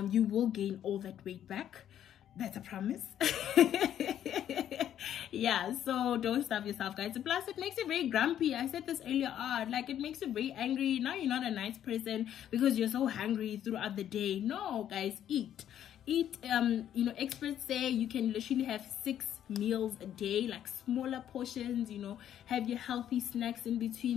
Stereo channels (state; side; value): quieter; right; 10.6 dB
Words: You will gain all that weight back. That's a promise. Yeah, so don't starve yourself, guys. Plus, it makes you very grumpy. I said this earlier on. Like, it makes you very angry. Now you're not a nice person because you're so hungry throughout the day. No, guys, eat. Eat. You know, experts say you can literally have 6 meals a day, like smaller portions, you know, have your healthy snacks in